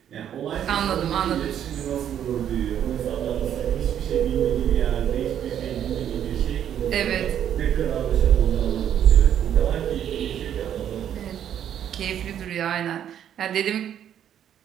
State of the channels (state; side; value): quieter; left; 9.9 dB